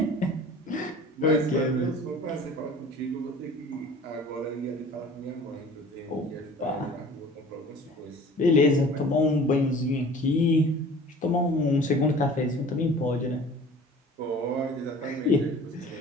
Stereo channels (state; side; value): normal; both; correlation 0.45